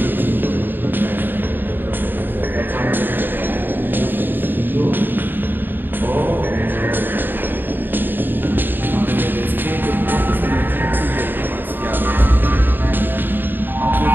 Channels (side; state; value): left; late; 0.094 ms